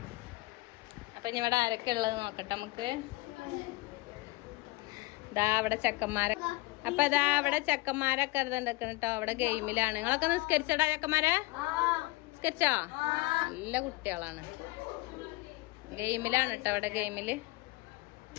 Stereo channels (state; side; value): quieter; right; 22.1 dB